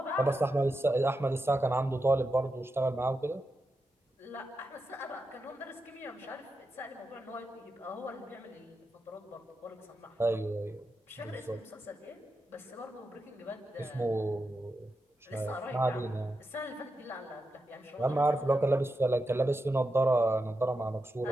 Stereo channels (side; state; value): both; normal; correlation 0.88